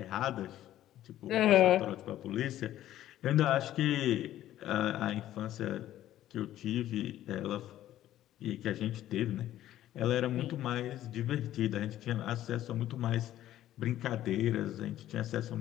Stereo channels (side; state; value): right; quieter; 13.1 dB